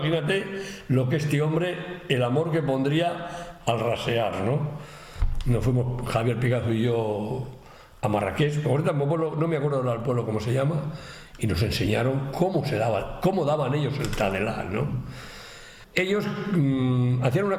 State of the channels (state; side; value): identical; both; correlation 1.00